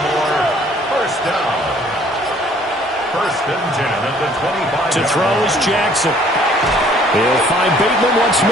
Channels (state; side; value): normal; both; correlation 0.58